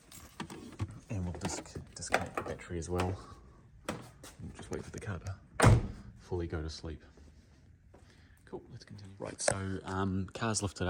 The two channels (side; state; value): both; identical; correlation 1.00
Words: And we'll disconnect the battery as well. We'll just wait for the car to fully go to sleep. Cool, let's continue. Right, so car's lifted